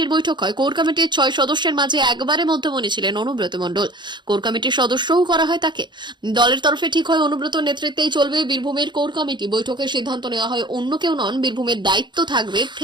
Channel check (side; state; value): left; late; 0.22 ms